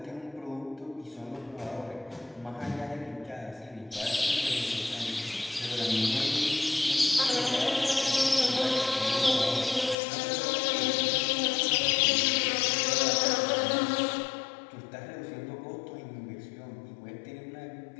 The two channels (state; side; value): drops out; right; at 10.0 s